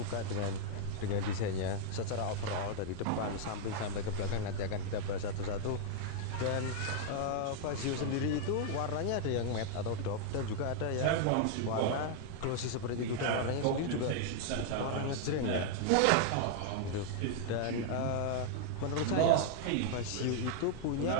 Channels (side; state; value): both; different; correlation 0.00